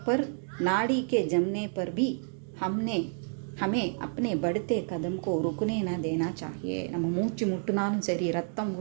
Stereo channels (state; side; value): silent; left; 58 dB below the other